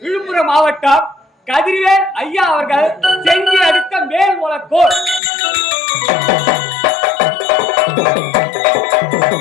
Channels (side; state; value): right; drops out; at 5.2 s